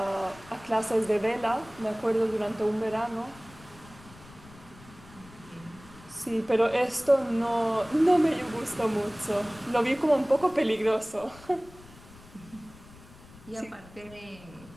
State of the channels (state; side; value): noise; left; rumble, 21 dB below the sound